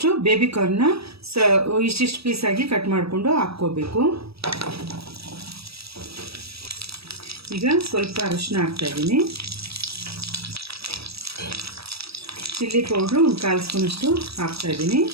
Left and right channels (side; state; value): left; late; 0.77 ms